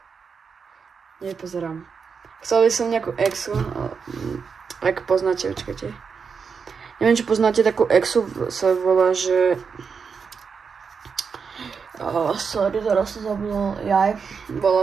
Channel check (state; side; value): quieter; left; 5.8 dB